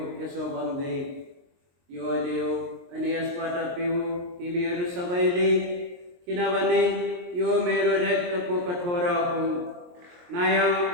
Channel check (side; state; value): left; late; 23 ms